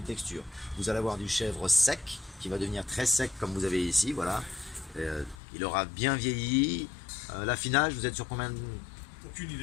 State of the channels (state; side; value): drops out; right; at 5.4 s